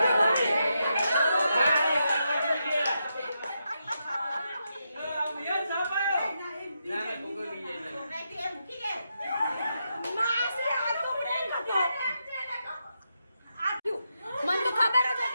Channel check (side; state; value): both; inverted; correlation -0.84